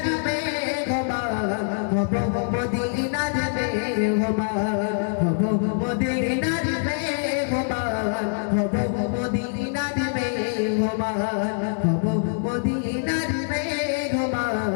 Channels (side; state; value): right; silent; 60 dB below the other